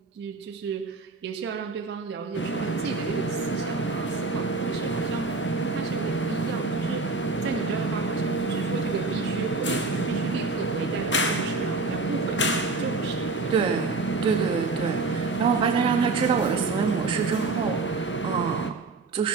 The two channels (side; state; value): left; quieter; 3.8 dB